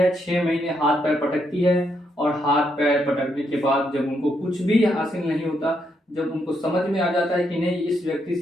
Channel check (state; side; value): normal; both; correlation 0.78